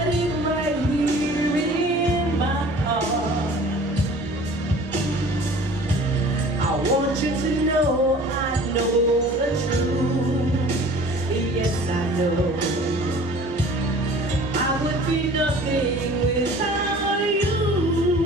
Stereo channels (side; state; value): both; normal; correlation 0.46